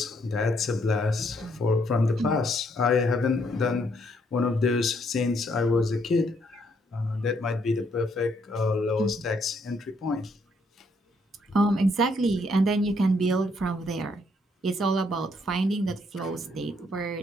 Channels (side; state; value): both; normal; correlation 0.71